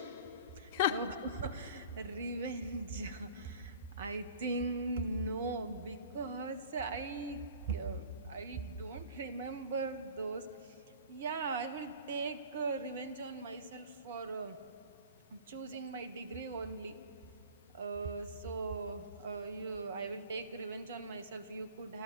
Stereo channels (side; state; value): both; inverted; correlation -0.43